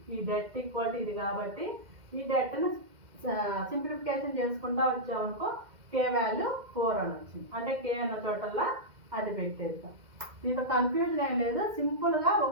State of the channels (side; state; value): left; late; 2.1 ms